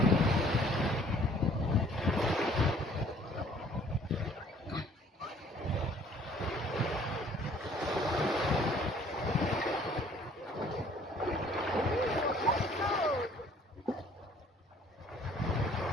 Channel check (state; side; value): normal; both; correlation 0.57